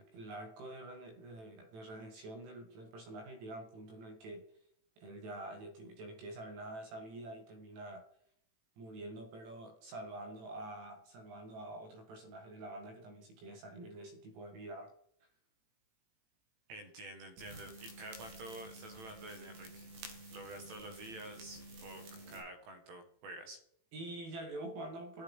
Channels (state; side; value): late; left; 18 ms